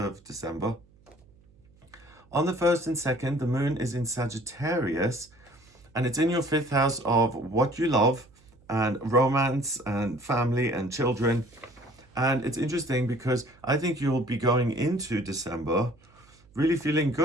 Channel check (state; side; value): noise; right; hum, 29 dB below the sound